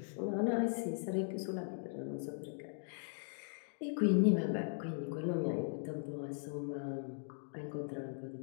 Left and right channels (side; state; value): right; silent; digital silence